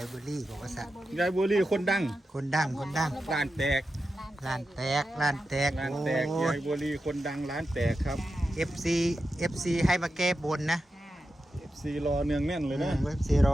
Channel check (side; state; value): both; normal; correlation 0.90